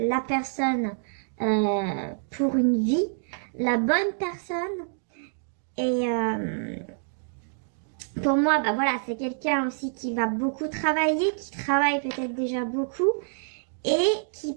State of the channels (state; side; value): silent; left; digital silence